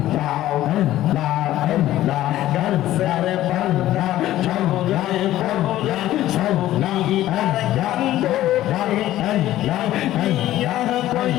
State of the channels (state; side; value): quieter; right; 14.2 dB